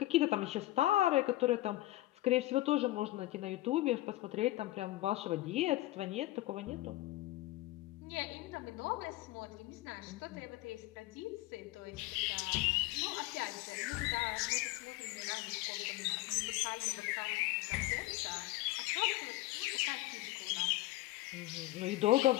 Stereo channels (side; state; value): right; quieter; 17.5 dB